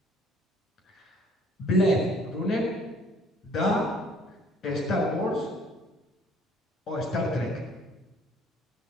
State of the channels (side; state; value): both; normal; correlation 0.57